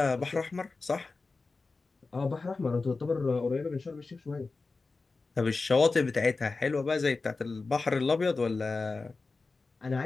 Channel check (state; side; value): quieter; right; 3.9 dB